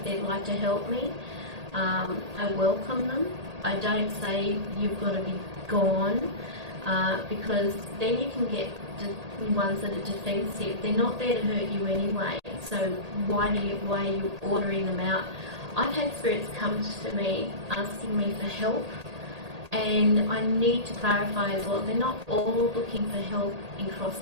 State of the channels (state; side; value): late; left; 1.8 ms